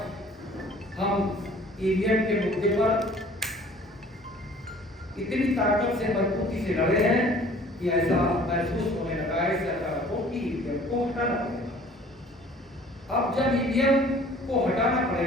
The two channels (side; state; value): both; normal; correlation 0.51